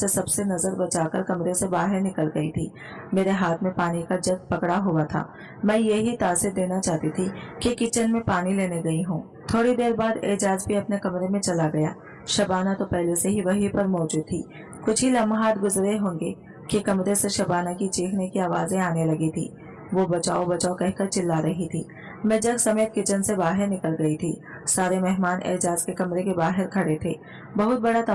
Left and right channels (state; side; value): identical; both; correlation 1.00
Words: सबसे नजर बचाकर कमरे से बाहर निकल गई थी। मेरे हाथ में पानी का जग पकड़ा हुआ था। मैं यही तासीर देना चाहती थी कि किचन में पानी लेने गई हूँ। थोड़ी देर बाद एजाज भी अपने कमरे में चला गया। शबाना तो पहले से ही वहीं पर मौजूद थी। कुछ ही लम्हात गुजरे होंगे कि कमरे से शबाना की चीखने की आवाजें आने लगी थी। वो बचाओ बचाओ कहकर चिल्ला रही थी। मैं जग समेत किचन से बाहर निकल गई थी। सारे मेहमान एजाज के कमरे के बाहर खड़े थे। बहुत बड़ा